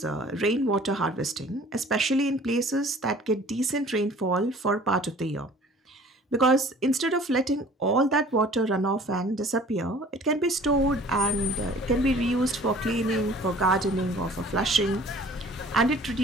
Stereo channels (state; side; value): normal; both; correlation 0.50